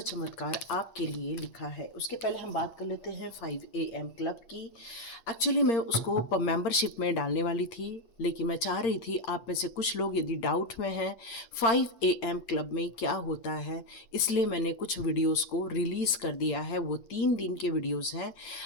चमत्कार आपके लिए लिखा है। उसके पहले हम बात कर लेते हैं 5 AM क्लब की। एक्चुअली मैं उसको मेंबरशिप में डालने वाली थी, लेकिन मैं चाह रही थी आप में से कुछ लोग यदि डाउट में हैं 5 AM क्लब में क्या होता है, इसलिए मैंने कुछ वीडियोस को रिलीज़ कर दिया है। वो 3 दिन के वीडियोस हैं।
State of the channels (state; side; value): late; right; 8.8 ms